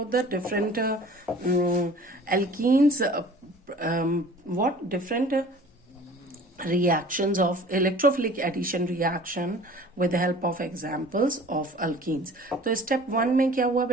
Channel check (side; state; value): both; normal; correlation 0.46